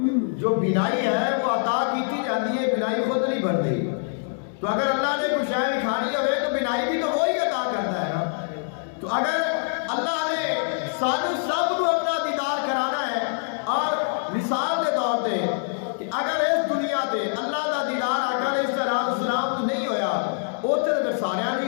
جو بینائی ہے وہ عطا کیتی جاتی ہے، بینائی خود نہیں بڑھتی۔ تو اگر اللہ نے کچھ شے دکھانی ہوئے تو بینائی بھی تو وہی عطا کرتا ہے نا۔ تو اگر اللہ نے سانو سب کو اپنا دیدار کرانا ہے، اور مثال کے طور پہ کہ اگر اس دنیا تے اللہ کا دیدار آقا علیہ السلام تو نہیں ہویا، اتنے اگر سارے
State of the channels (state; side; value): silent; right; digital silence